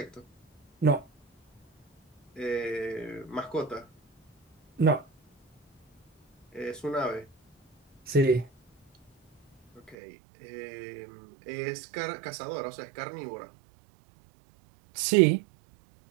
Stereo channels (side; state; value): left; drops out; at 10.0 s